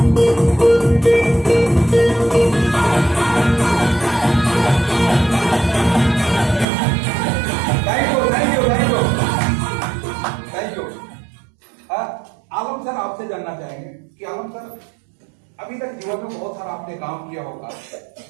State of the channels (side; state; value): left; drops out; at 6.7 s